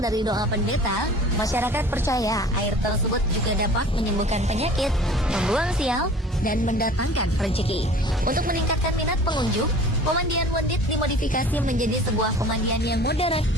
doa pendeta, masyarakat percaya air tersebut juga dapat menyembuhkan penyakit, membuang sial, dan mendatangkan rezeki. Untuk meningkatkan minat pengunjung, pemandian Wondit dimodifikasi menjadi sebuah pemandian yang modern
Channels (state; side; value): normal; both; correlation 0.45